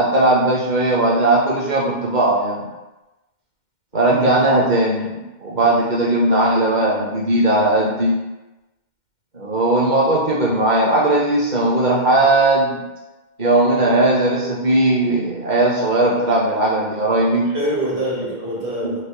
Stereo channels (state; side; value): late; right; 2.1 ms